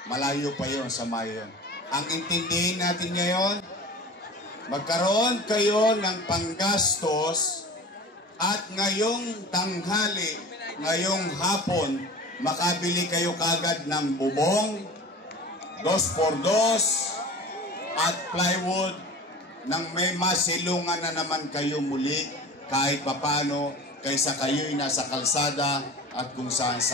Malayo pa yon sa mayon. Ang intindihin natin ngayon, magkaroon kayo ng panggastos at ngayong tanghali, ngayong hapon, makabili kayo kagad ng bubong, 2x2 at plywood nang may masilungan na naman kayo muli kahit papano kaysa kayo'y nasa kalsada at kung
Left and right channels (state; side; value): normal; both; correlation 0.37